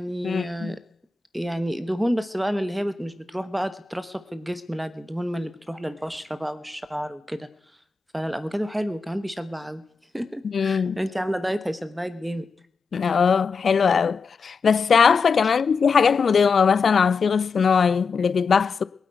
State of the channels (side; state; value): right; quieter; 4.7 dB